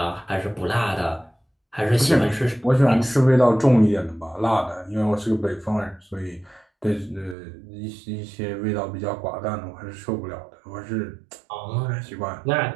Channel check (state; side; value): drops out; left; at 7.4 s